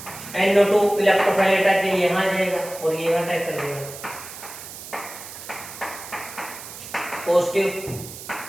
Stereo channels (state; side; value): noise; right; hiss, 13 dB below the sound